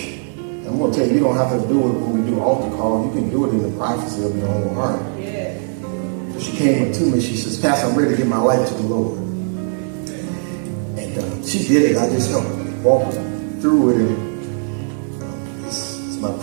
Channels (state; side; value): silent; left; digital silence